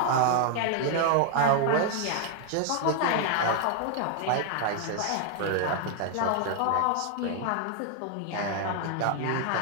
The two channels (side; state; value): both; different; correlation 0.00